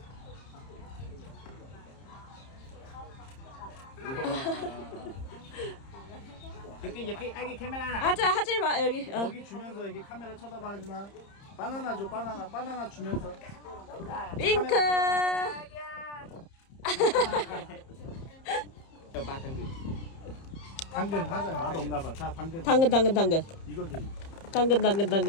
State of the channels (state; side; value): late; right; 30 ms